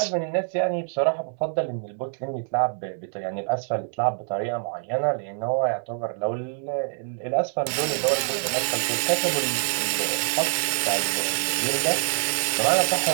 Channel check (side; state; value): left; silent; 61 dB below the other